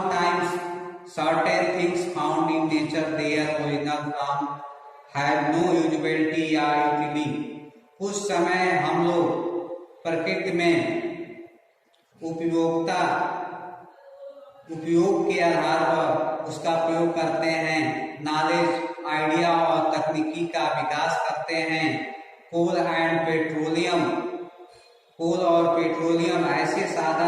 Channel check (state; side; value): identical; both; correlation 1.00